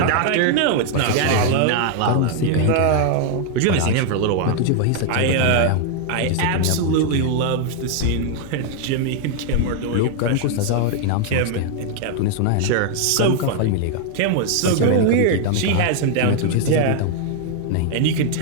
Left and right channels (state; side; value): different; both; correlation 0.00